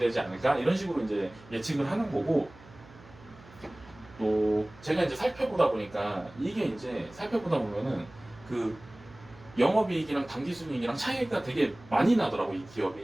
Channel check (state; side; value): noise; right; hum, 22 dB below the sound